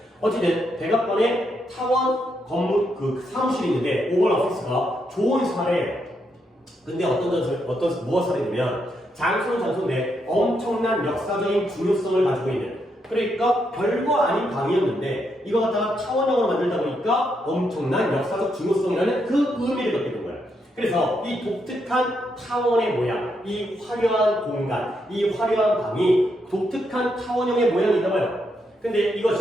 어쨌든 백악관에 타원 건물 그 사무실이 있는데 오벌 오피스가 좋은 사례예요. 근데 무엇을 하냐면 장소는 장소인데 엄청난 역사적인 중요성을 가지고 있는, 그러니까 별거 아닌 방이었는데 이거 갖다가 타원형으로 만들다 보니까 엄청난 역사적 중요성이라는 그 의미를 갖게 된 거예요. 그래서 이 독특한 타원의 모양, 이 화려한 공간, 이 화려한 방이 독특한 타원형의 모양이다 봐요. 근데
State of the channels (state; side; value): normal; both; correlation 0.79